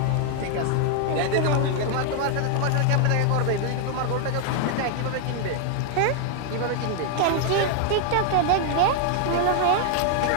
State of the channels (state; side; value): different; both; correlation 0.00